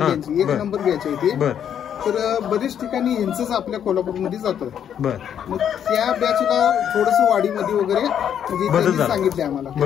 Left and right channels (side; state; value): right; quieter; 9.1 dB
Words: 1 नंबर बॅच आहे ती. तर बरेच ठिकाणी यांचंच आपल्या कोल्हापूरमध्ये जातं. मग त्या बॅचला थोडस वाढीमध्ये वगैरे म्हणजे सांगितले आम्हाला.